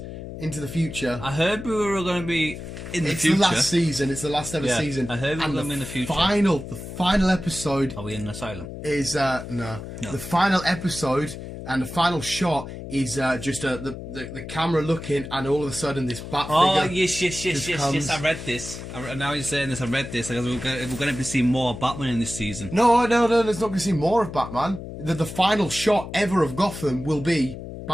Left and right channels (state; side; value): noise; left; hum, 10 dB below the sound